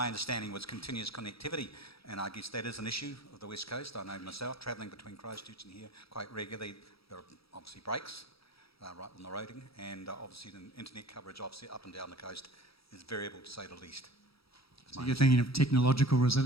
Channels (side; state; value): right; late; 0.76 ms